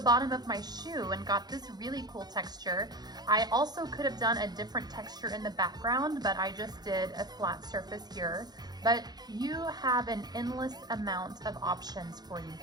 of my shoe and got this really cool texture. I also could have done a different texture in the background, but I just did a flat surface here. But you have an endless amount of options for you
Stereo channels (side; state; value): left; late; 0.20 ms